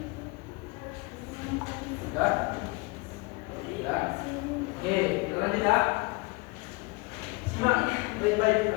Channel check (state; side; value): quieter; right; 25.9 dB